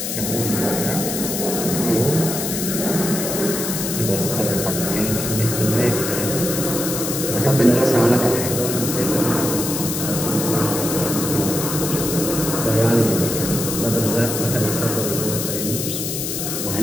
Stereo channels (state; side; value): noise; left; hiss, 3 dB below the sound